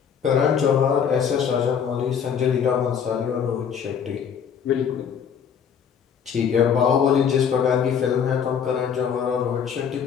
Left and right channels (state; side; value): quieter; right; 7.5 dB